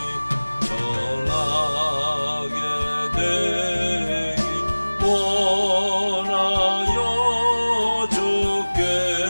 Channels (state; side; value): inverted; both; correlation -1.00